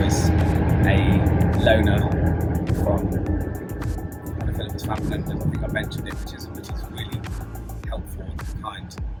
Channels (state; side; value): identical; both; correlation 1.00